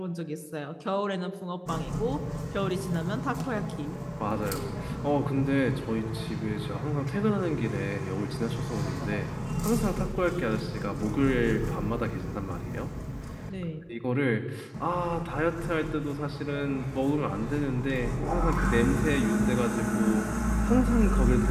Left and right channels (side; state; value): both; identical; correlation 1.00